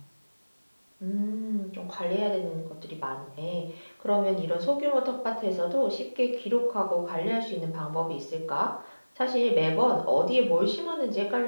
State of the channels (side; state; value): both; inverted; correlation -1.00